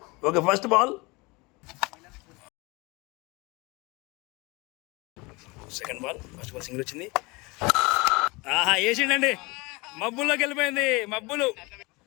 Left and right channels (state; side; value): quieter; right; 25.4 dB